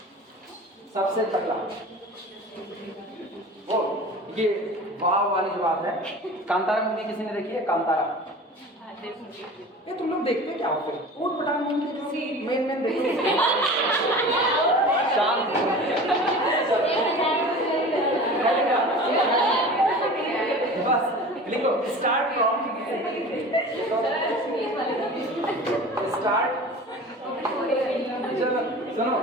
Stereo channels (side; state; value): both; normal; correlation 0.37